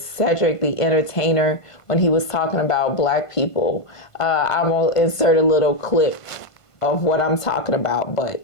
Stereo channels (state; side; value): late; right; 1.5 ms